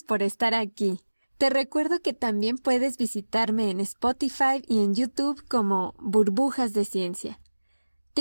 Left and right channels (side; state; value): both; inverted; correlation -1.00